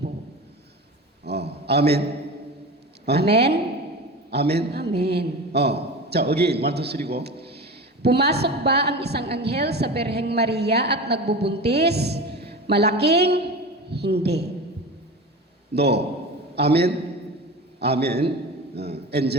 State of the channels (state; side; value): normal; both; correlation 0.30